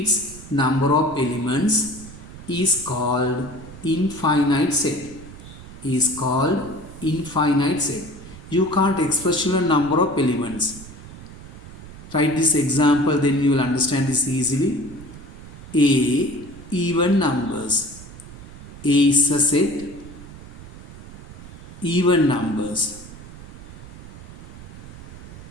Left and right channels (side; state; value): right; noise; rumble, 15 dB below the sound